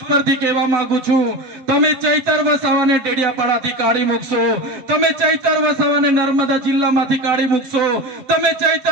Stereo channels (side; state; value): left; late; 8.0 ms